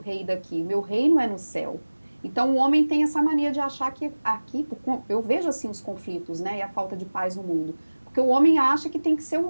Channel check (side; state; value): both; inverted; correlation -1.00